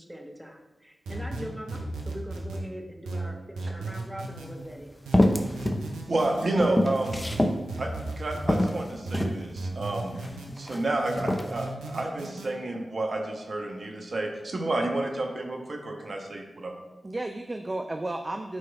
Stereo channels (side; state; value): both; normal; correlation 0.94